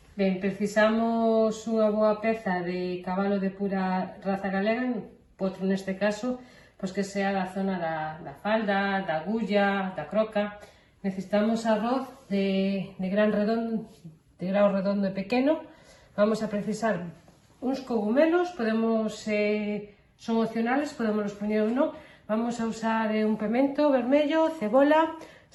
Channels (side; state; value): both; identical; correlation 1.00